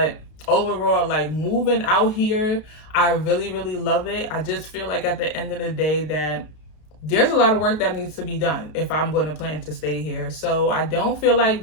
overall, like moving out here, I really love it. I just feel like at the end of the day that there's a lot of work that needs to be done if I'm going to plan to stay here. So I don't feel like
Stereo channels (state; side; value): late; right; 32 ms